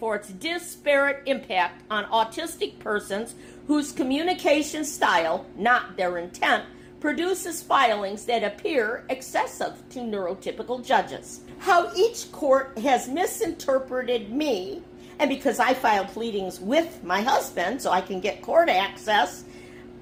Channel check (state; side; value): identical; both; correlation 1.00